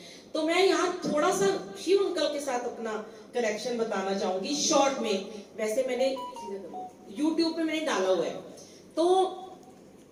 तो मैं यहाँ थोड़ा सा शिव अंकल के साथ अपना कनेक्शन बताना चाहूंगी शॉर्ट में। वैसे मैंने YouTube पे मैंने डाला हुआ है। तो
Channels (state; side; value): identical; both; correlation 1.00